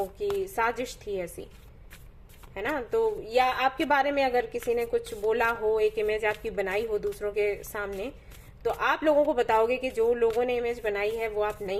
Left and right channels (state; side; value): identical; both; correlation 1.00